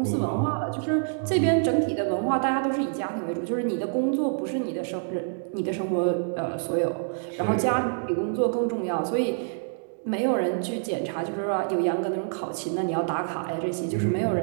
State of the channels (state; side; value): silent; left; digital silence